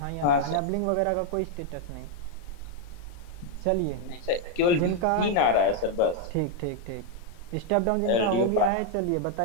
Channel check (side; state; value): right; late; 34 ms